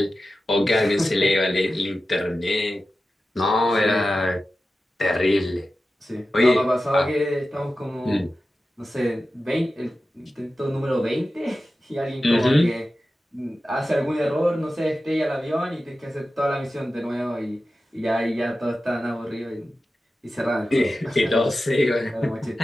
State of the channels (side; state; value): both; normal; correlation 0.94